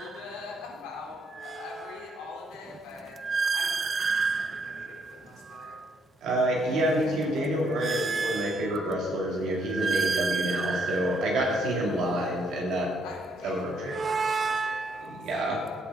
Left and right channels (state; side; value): normal; both; correlation 0.72